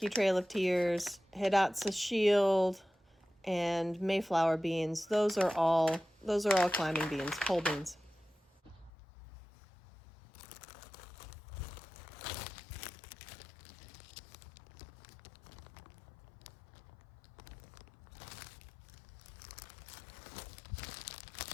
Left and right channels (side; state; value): right; drops out; at 8.9 s